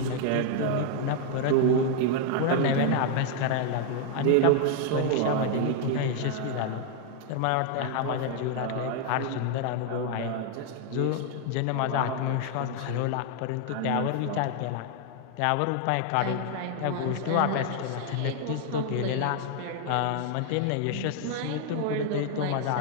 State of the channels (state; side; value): different; both; correlation 0.00